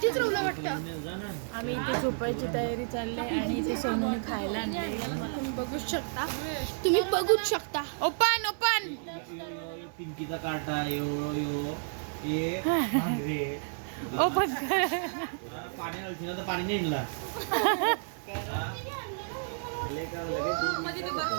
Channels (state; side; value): silent; left; digital silence